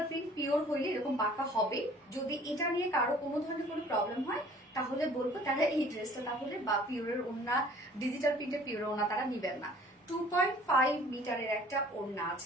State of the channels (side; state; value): both; normal; correlation 0.52